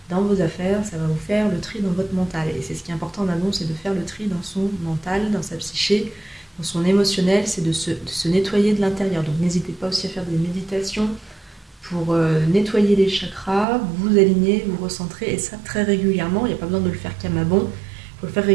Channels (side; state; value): left; drops out; at 13.7 s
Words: dans vos affaires, ça va vous faire le tri dans votre mental. Et c'est ce qui est important en amont, c'est de faire le tri dans son mental, dans sa psyché, dans son émotionnel, c'est de se nettoyer de l'intérieur. Donc n'hésitez pas aussi à faire des méditations pour nettoyer les chakras, vous aligner, vous recentrer, et ça très régulièrement. Il n'y a pas besoin de le faire qu'à Mammon, il faut le faire